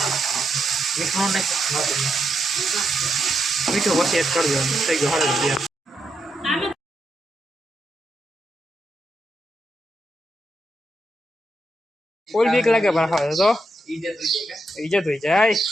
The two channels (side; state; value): both; normal; correlation 0.82